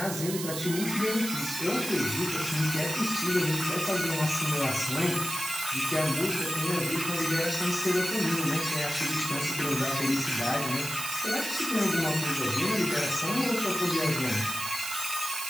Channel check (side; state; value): right; noise; hiss, 6 dB below the sound